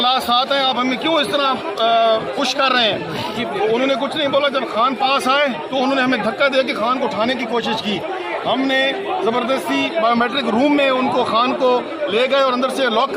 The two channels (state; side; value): identical; both; correlation 1.00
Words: ساتھ ہیں، آپ ہمیں کیوں اس طرح پش کر رہے ہیں. انہوں نے کچھ نہیں بولا. جب خان پاس آئے تو انہوں نے ہمیں دھکا دے کے خان کو اٹھانے کی کوشش کی. ہم نے زبردستی بایو میٹرک روم میں ان کو خان کو لے گئے اور اندر سے لاک